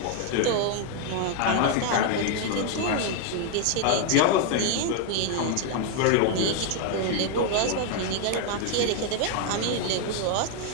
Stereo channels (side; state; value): both; different; correlation 0.00